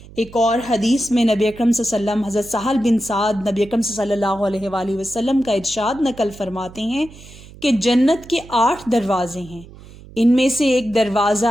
ایک اور حدیث میں نبی اکرم صلی اللہ علیہ وسلم حضرت سہل بن سعد نبی اکرم صلی اللہ علیہ وآلہ وسلم کا ارشاد نقل فرماتے ہیں کہ جنت کے 8 دروازے ہیں، ان میں سے ایک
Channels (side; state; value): right; noise; hum, 19 dB below the sound